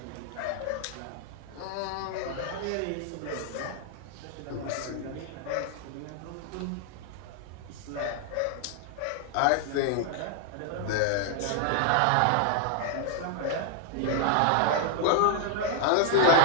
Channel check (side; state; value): both; different; correlation 0.00